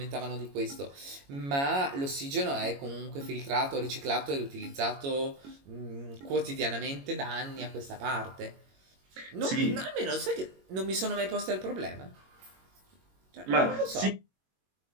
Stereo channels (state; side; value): late; left; 22 ms